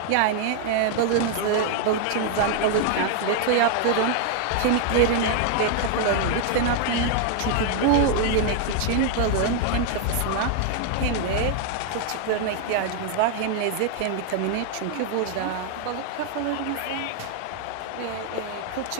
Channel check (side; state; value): both; different; correlation 0.00